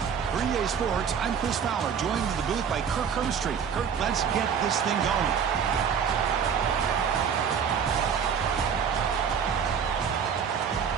For EA Sports, I'm Chris Fowler, joined in the booth by Kirk Herbstreit. Kirk, let's get this thing going.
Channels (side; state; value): left; quieter; 7.1 dB